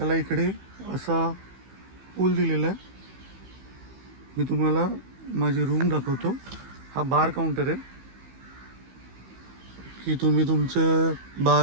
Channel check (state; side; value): late; left; 15 ms